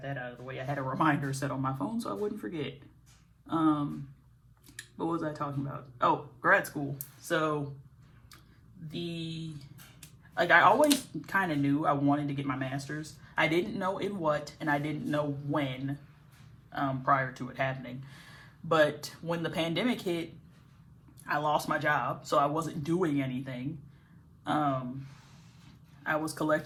that out of the way. I had a reminder set on my phone so I wouldn't forget. What was I talking about? Oh, grad school. So I always kind of knew I wanted to get my master's. I didn't know in what, and I didn't know when, prior to it happening. But when the pandemic hit, I lost my job, so I wasn't doing anything. I was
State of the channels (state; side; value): identical; both; correlation 1.00